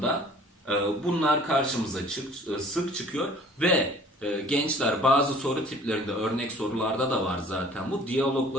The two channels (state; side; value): normal; both; correlation 0.50